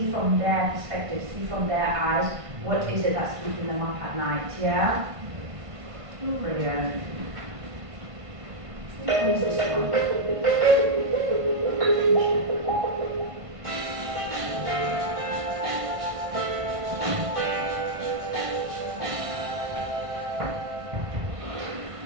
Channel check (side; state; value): left; late; 1.5 ms